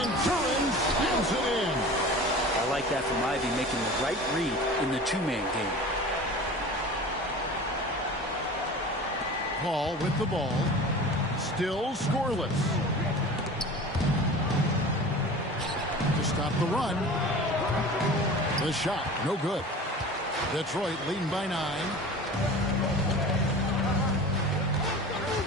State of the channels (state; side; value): normal; both; correlation 0.37